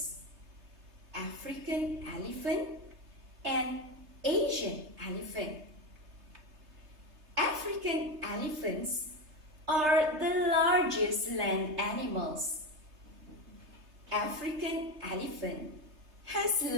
African elephant and Asian elephant. African elephants are the largest land animals. African elephant has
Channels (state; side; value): late; left; 3.3 ms